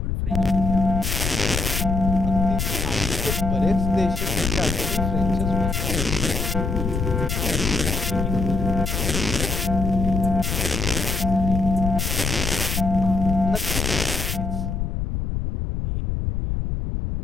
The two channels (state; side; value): noise; left; rumble, 1 dB below the sound